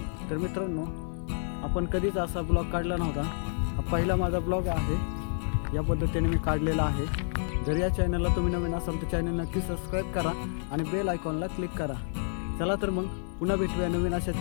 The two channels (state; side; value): silent; right; digital silence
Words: तर मित्रांनो, आपण कधीच असा ब्लॉग काढला नव्हता. हा पहिला माझा ब्लॉग आहे. या पद्धतीने मी काढलेला आहे. जर या चॅनलला तुम्ही नवीन असाल तर चॅनल नक्की सबस्क्राईब करा आणि बेल आयकॉनला क्लिक करा. चला तर मग पुन्हा भेटूया नवीन अशाच